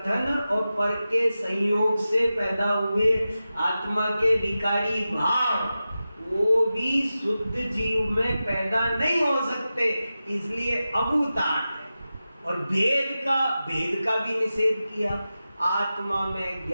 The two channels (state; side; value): inverted; both; correlation -0.93